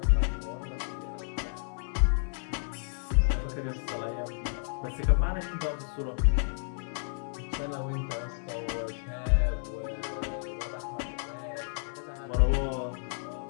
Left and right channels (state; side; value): silent; right; 57 dB below the other